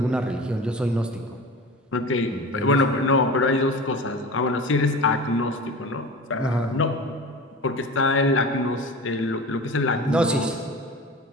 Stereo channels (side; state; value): both; normal; correlation 0.34